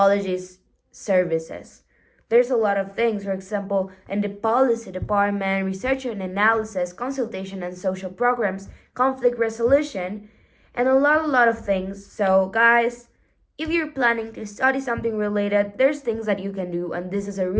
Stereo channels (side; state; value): both; identical; correlation 1.00